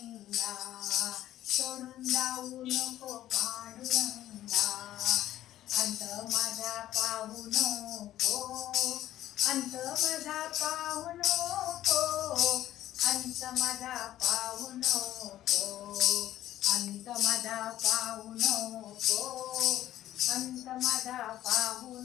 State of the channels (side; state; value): right; quieter; 13.2 dB